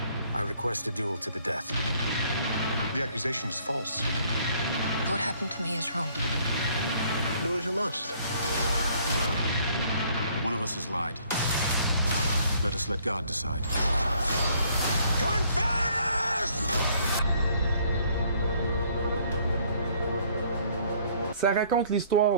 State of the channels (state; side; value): inverted; both; correlation -0.62